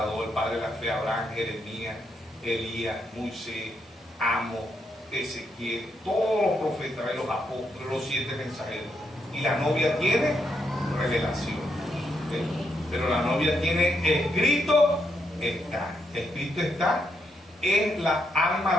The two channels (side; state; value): both; normal; correlation 0.79